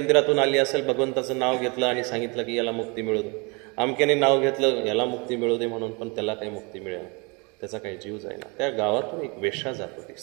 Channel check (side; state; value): left; quieter; 30.1 dB